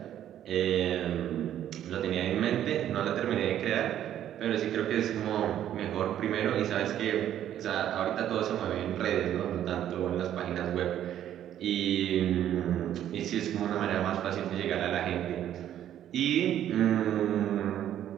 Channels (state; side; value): quieter; left; 11.1 dB